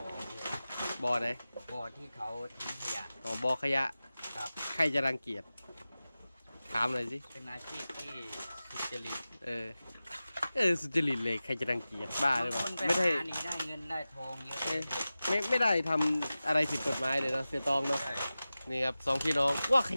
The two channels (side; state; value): both; inverted; correlation -0.96